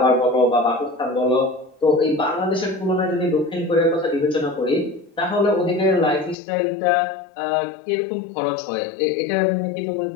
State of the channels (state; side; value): drops out; right; at 6.4 s